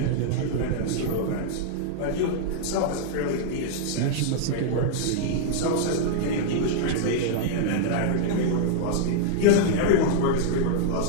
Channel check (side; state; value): both; different; correlation -0.01